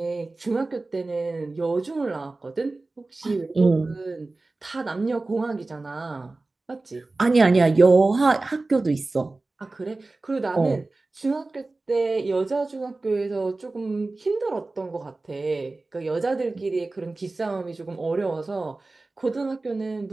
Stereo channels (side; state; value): left; quieter; 3.3 dB